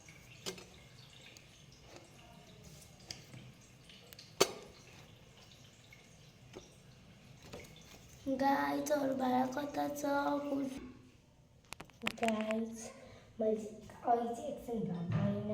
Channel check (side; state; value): both; identical; correlation 1.00